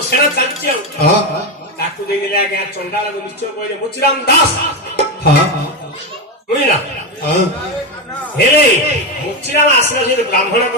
ସେଣା ଚାଲିଛି ଆଉ ତାକୁ ଦେଇଦେଲେ ଆଜ୍ଞା ଚଣ୍ଡାଳକୁ ନିଶ୍ଚୟ କହିଲେ ମୁଚିରାମ ଦାସ ବୁଝିଲା ହେଲେ ମୁଚିରାମ ଆସିଲା ସେ ବ୍ରାହ୍ମଣ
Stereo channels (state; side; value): normal; both; correlation 0.12